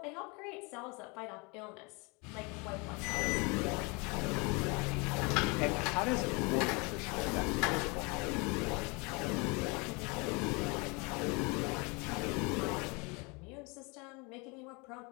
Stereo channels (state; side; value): quieter; right; 29.3 dB